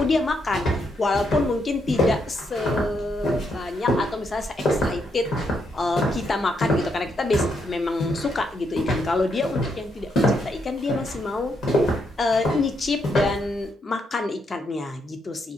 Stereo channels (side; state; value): both; normal; correlation 0.78